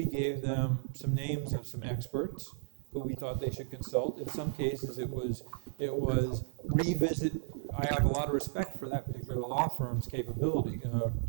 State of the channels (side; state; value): left; silent; digital silence